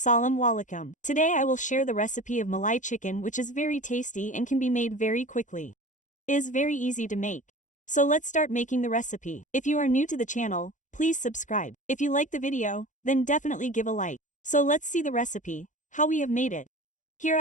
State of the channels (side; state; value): right; late; 0.36 ms